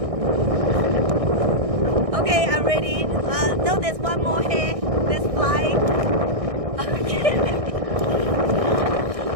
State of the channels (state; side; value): late; left; 1.6 ms